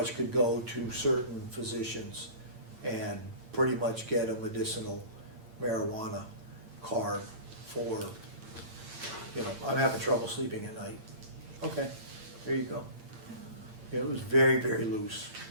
could go to certain physicians and pretty much get a medicinal marijuana card for, you know, I'm having trouble sleeping at night. Okay, there you go. Yeah, it was very, very loose,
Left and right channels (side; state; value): left; late; 8.8 ms